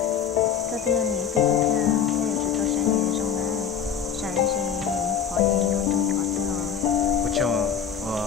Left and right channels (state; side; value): quieter; right; 8.0 dB